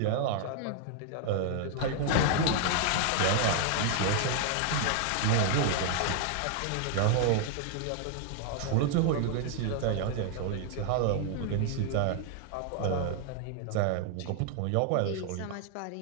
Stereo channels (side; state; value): both; different; correlation 0.00